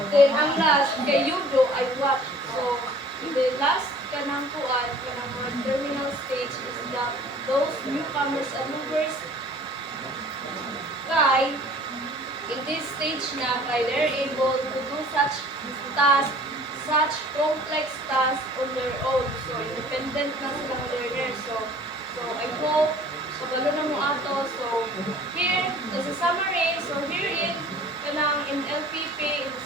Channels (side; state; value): both; normal; correlation 0.50